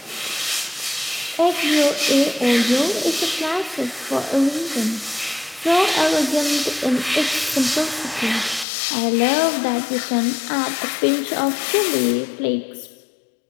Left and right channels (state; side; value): drops out; right; at 8.7 s